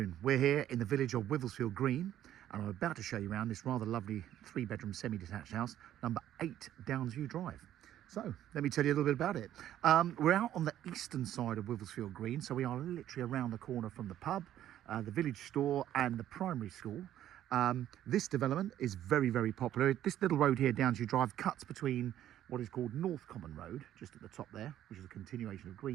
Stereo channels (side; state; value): left; quieter; 11.9 dB